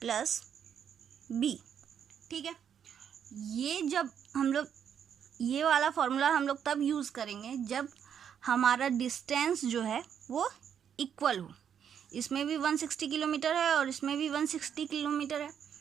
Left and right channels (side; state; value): left; quieter; 8.4 dB